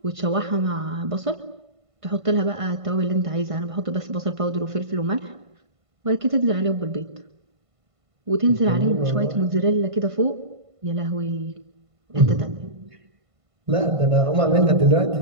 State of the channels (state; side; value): late; left; 1.5 ms